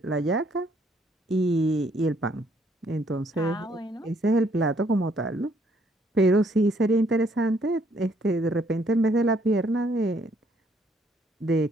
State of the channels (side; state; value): both; normal; correlation 0.67